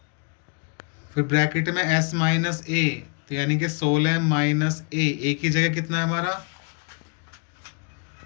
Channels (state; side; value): quieter; right; 37.3 dB